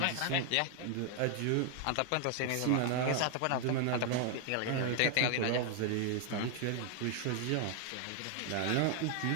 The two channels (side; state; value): both; different; correlation 0.00